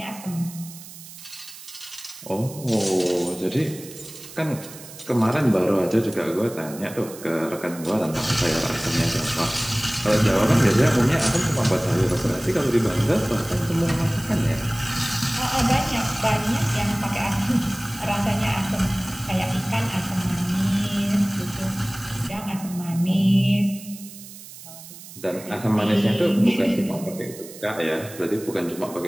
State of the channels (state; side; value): noise; right; hiss, 16 dB below the sound